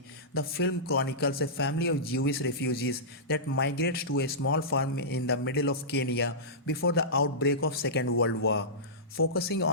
the film chronicles a family of Jewish refugees that migrates to a small farm in the middle of Kenya before the outbreak of Second World War. Focusing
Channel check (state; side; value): normal; both; correlation -0.17